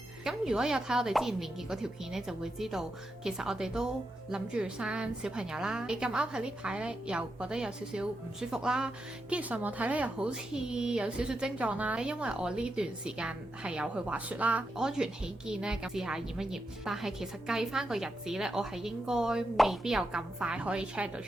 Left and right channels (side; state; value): both; normal; correlation 0.86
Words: 咁如果有睇我哋之前連結嗰條片呢，就會知道其實我哋都諗住生小朋友啦。你咁啱喺呢排呢，又覺得有少少唔舒服啦，跟住上網睇呢，又好似有少少症狀啦。因為我呢段時間係有去滑雪啦，安全起見呢，咁試下驗一驗。但係其實計翻個日子呢，我係應該未必有咁快可以 check 到